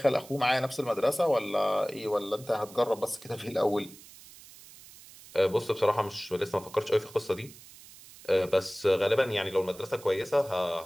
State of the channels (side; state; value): right; noise; hiss, 20 dB below the sound